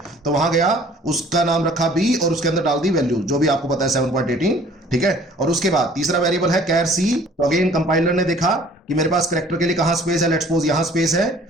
तो वहां गया, उसका नाम रखा बी और उसके अंदर डाल दी वैल्यू जो भी आपको पता है 7.18। ठीक है, और उसके बाद तीसरा वेरिएबल है कैर सी। तो अगेन कंपाइलर ने देखा कि मेरे पास कैरेक्टर के लिए कहां स्पेस है, लेट्स सपोज यहां स्पेस है,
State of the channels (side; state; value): both; normal; correlation 0.53